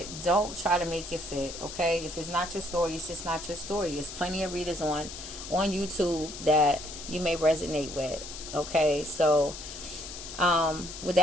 don't try to make it fit, okay? If it's not your story, it's just not your story. There's plenty of readers on YouTube that you may resonate with, okay? So, with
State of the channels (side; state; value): left; noise; hiss, 10 dB below the sound